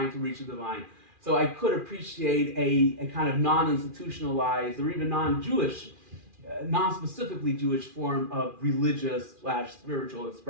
to reach the divine. So I could appreciate a kind of non-institutionalized or even non-Jewish, non-specifically Jewish form of religious/spiritual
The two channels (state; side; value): late; left; 2.4 ms